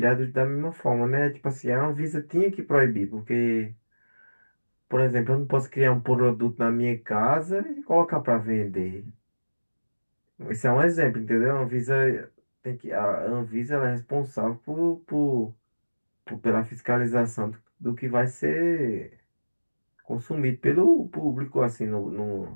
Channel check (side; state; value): both; inverted; correlation -1.00